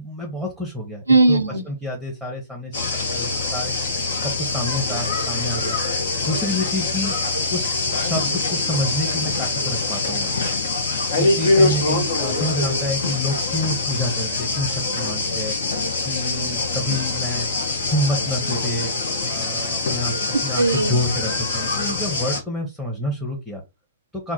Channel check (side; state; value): both; inverted; correlation -0.42